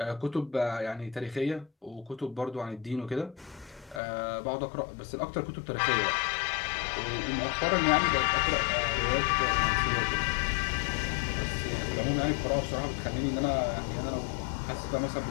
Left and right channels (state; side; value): drops out; right; at 4.0 s